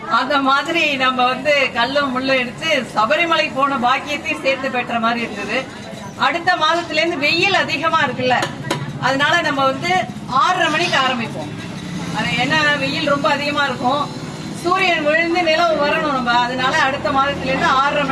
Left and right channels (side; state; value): both; identical; correlation 1.00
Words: அந்த மாதிரி நம்ம வந்து கல்லும் முள்ளும் எடுத்து சபரிமலை போன பாக்கியத்தையும் சேர்த்து பெற்ற மாதிரி இருந்தது. அடுத்த மாதத்துல இருந்து வெயில் அதிகமா இருக்குல்ல, அதனால நம்ம வந்து 6:30 மணிக்கு ஆரம்பிப்போம். அது என்ன, வெயில் ரொம்ப அதிகமா இருக்கும், சூரியன் விழுந்து நிலவு வரணும் நம்ம, அதனால அடுத்த மாதத்துல இருந்து 6:30